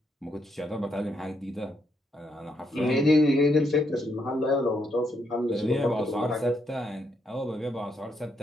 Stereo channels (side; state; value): both; normal; correlation 0.77